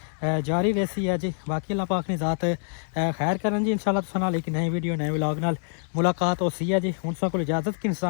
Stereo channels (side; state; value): right; silent; digital silence